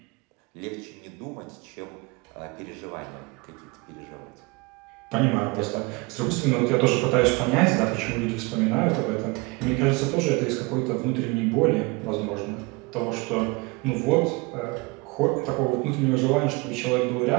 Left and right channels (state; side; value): quieter; left; 26.6 dB